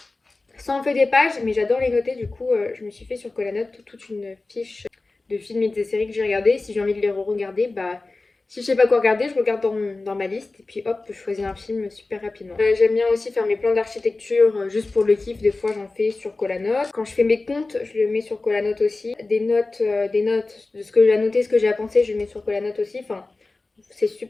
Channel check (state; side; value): quieter; right; 3.4 dB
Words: ça en fait des pages, mais j'adore les noter. Du coup, je me suis fait sur Colanote toute une fiche de films et des séries que j'ai regardées. Si j'ai envie de les re-regarder, bah, si je sais pas quoi regarder, je regarde dans ma liste et puis hop, je choisis un film super rapidement. J'aime bien aussi faire mes plans d'architecture juste pour le kiff. Des fois, j'en fais sur Colanote. Quand je fais mes comptes, je le mets sur Colanote aussi. Des notes de ce que j'ai à noter, ce que j'ai à penser, je le mets sur Colanote aussi. Enfin, c'est